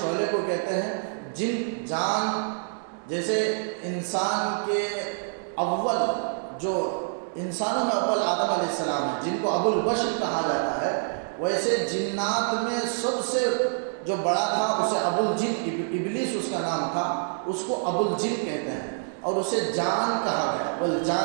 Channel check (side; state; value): left; silent; digital silence